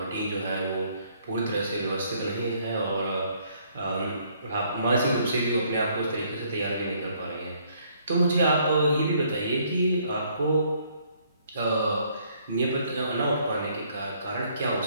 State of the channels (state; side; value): inverted; both; correlation -0.66